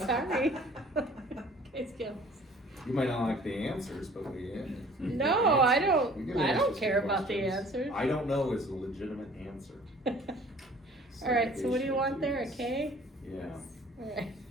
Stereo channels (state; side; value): normal; both; correlation 0.52